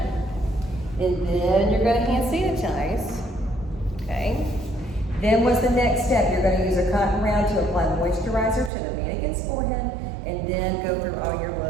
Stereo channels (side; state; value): left; drops out; at 8.7 s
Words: and then you're gonna hand sanitize, okay? Then what's the next step? You're gonna use a cotton round to apply moisturizer to the mannequin's forehead, and then go through all your